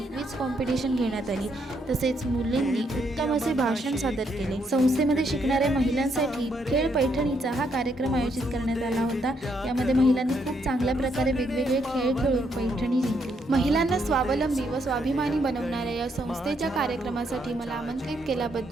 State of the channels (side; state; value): both; normal; correlation 0.75